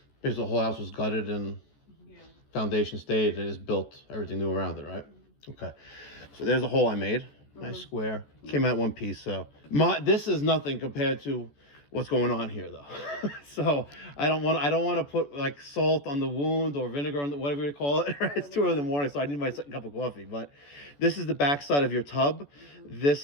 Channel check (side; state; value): right; late; 14 ms